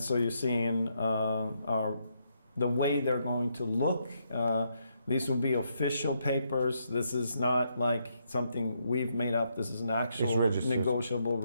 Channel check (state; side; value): inverted; both; correlation -0.77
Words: so you're seeing the way they're going to look. These will be official papers. This is not like something we've made up. This is an actual negotiable